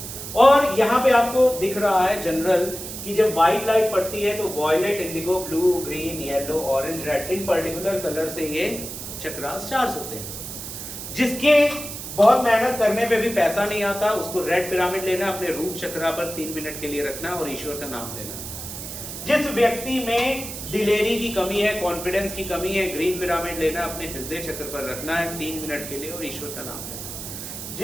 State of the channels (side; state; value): right; noise; hiss, 9 dB below the sound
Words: और यहाँ पे आपको दिख रहा है जनरल कि जब व्हाइट लाइट पड़ती है तो violet, indigo, blue, green, yellow, orange, red, in particular colour से ये चक्रास चार्ज होते हैं। जिसके बहुत मेहनत करने पे भी पैसा नहीं आता, उसको रेड पिरामिड लेना, अपने रूट चक्रा पर 3 मिनट के लिए रखना और ईश्वर का नाम लेना। जिस व्यक्ति में दिलेरी की कमी है, कॉन्फिडेंस की कमी है, ग्रीन पिरामिड लेना, अपने हृदय चक्र पर रखना है 3 मिनट के लिए और ईश्वर का नाम लेना।